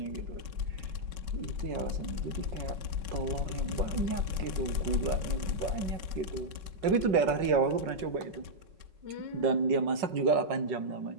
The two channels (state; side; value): late; left; 5.4 ms